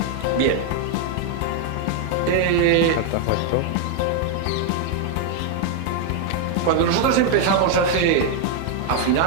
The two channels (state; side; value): different; both; correlation 0.00